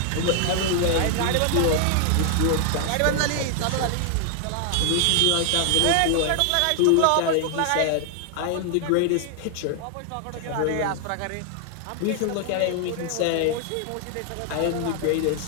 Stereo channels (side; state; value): both; different; correlation 0.00